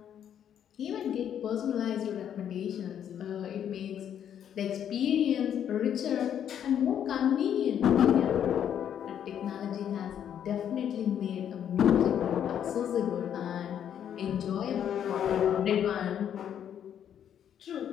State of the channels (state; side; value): quieter; right; 9.4 dB